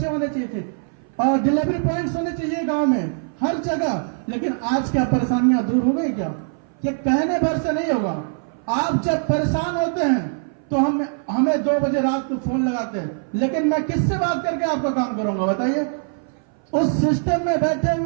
होने चाहिए थे, और डिलीवरी पॉइंट्स होने चाहिए गांव में, हर जगह। लेकिन आज क्या परेशानियां दूर हो गई क्या? ये कहने भर से नहीं होगा। आप जब परेशान होते हैं तो हमें 2 बजे रात को फोन लगाते हैं, लेकिन मैं किससे बात करके आपका काम करूंगा? बताइए। उस सिस्टम में बैठे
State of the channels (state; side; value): silent; left; 59 dB below the other